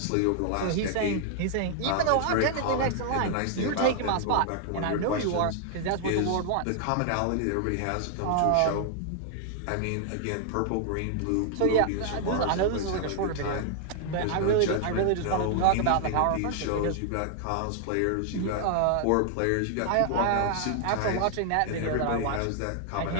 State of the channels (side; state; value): both; different; correlation 0.00